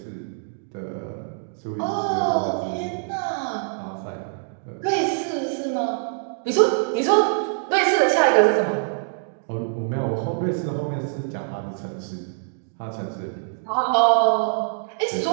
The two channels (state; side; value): silent; left; digital silence